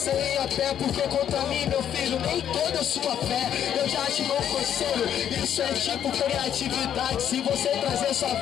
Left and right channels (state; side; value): quieter; right; 9.7 dB